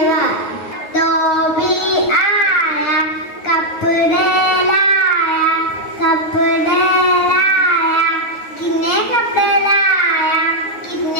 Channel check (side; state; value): right; late; 9.4 ms